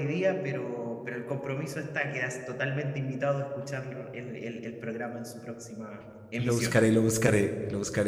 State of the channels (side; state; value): both; identical; correlation 1.00